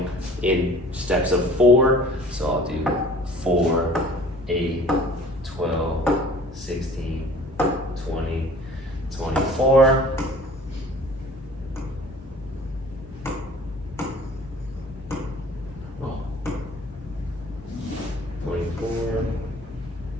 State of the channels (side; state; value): both; normal; correlation 0.48